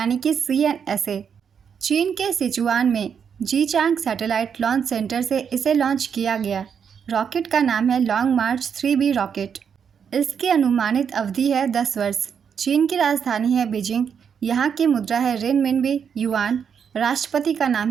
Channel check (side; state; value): left; quieter; 7.2 dB